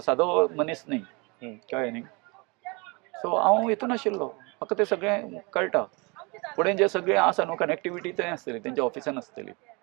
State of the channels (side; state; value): left; quieter; 28.9 dB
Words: मनीस न्ही कळ्ळें न्ही सो हांव हितून आशिल्लो म्हाका तें सगळें कळटा फुडें जे सगळें आसा न्हू कनेक्टिविटी थंय आसतली तेंच्या ऑफिसान आसतली